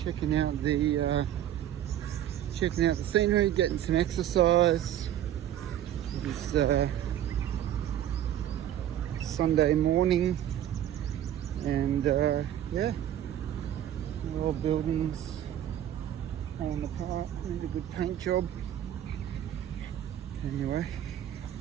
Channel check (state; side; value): quieter; left; 11.2 dB